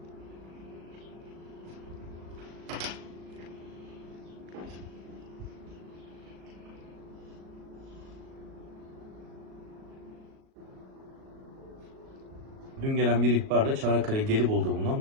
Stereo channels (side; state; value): left; late; 37 ms